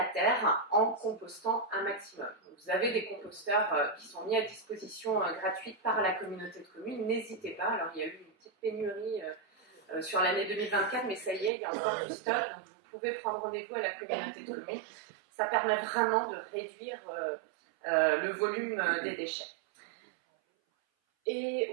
terre en compostant un maximum. Vous avez des composteurs qui sont mis à disposition gratuite par la communauté de communes, n'hésitez pas. Alors il y a eu une petite pénurie sur l'année 2024, mais ça y est, il y a encore du stock, donc vous pouvez prendre rendez-vous à la communauté de communes. Ça permet vraiment de réduire le volume des déchets.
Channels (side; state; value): left; drops out; at 11.5 s